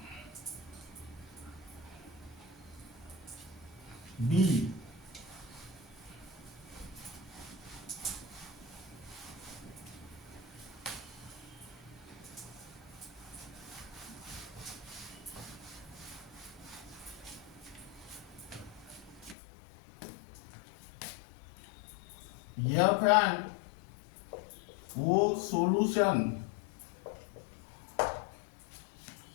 B, F and O solution.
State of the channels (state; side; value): drops out; right; at 19.4 s